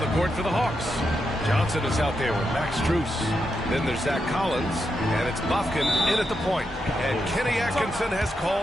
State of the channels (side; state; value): both; normal; correlation 0.85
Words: the court for the Hawks, Johnson is out there with Max Strus. Then there's Zach Collins, and it's Buffkin in at the point. And Kenny Atkinson has